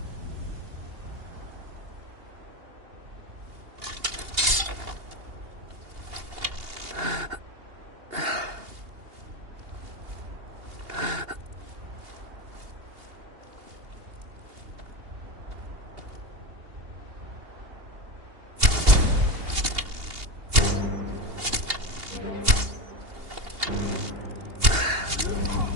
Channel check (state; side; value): late; left; 2.8 ms